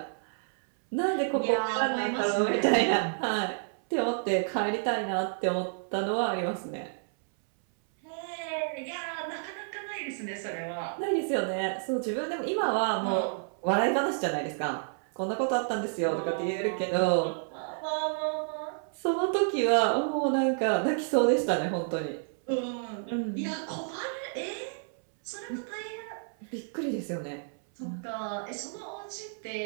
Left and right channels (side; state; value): left; silent; 58 dB below the other